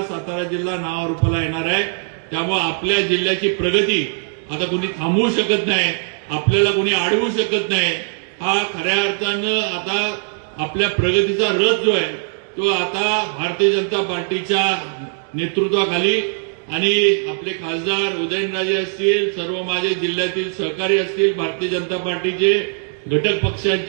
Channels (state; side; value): silent; left; 65 dB below the other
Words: सातारा जिल्हा नावारूपाला येणार आहे. त्यामुळे आपल्या जिल्ह्याची प्रगती आता कोणी थांबवू शकत नाही, आपल्याला कोणी अडवू शकत नाही. हा खऱ्या अर्थानं आता आपल्या प्रगतीचा रथ जो आहे तो आता भारतीय जनता पार्टीच्या नेतृत्वाखाली आणि आपले खासदार उदयनराजे असतील, सर्व माझे जिल्ह्यातील सहकारी असतील, भारतीय जनता पार्टीचे घटक